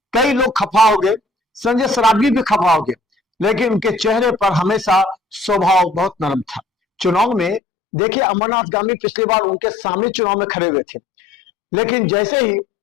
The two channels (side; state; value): right; drops out; at 7.6 s